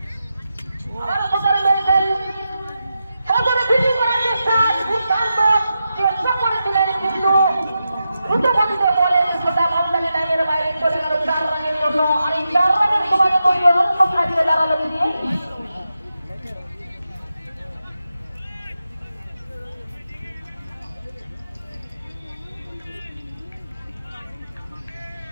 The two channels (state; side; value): inverted; both; correlation -0.88